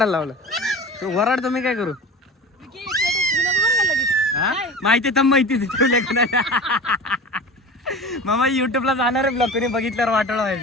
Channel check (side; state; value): both; normal; correlation 0.34